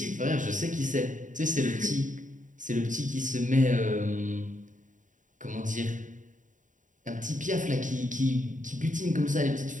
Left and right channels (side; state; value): left; late; 0.37 ms